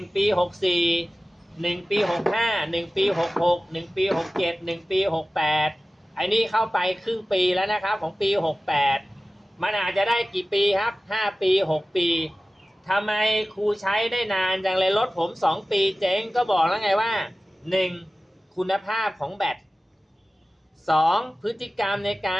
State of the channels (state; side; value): normal; both; correlation 0.96